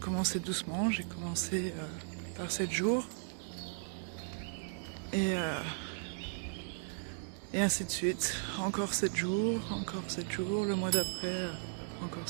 doucement, j'ai commencé par 7 jours. Et ainsi de suite. Encore 7 jours, le mois d'après, encore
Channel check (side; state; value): left; silent; digital silence